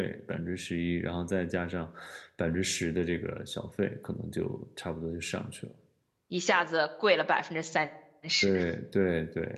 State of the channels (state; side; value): identical; both; correlation 1.00